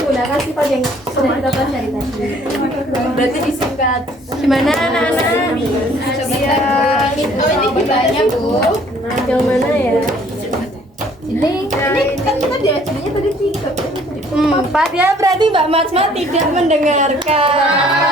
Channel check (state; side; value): normal; both; correlation 0.58